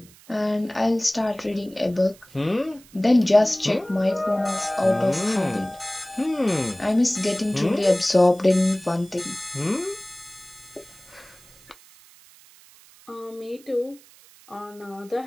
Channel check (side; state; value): right; noise; hiss, 25 dB below the sound